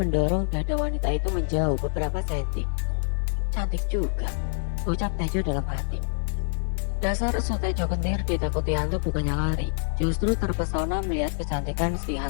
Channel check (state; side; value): silent; right; digital silence